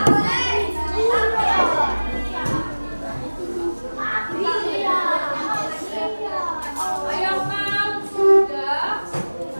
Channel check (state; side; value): inverted; both; correlation -1.00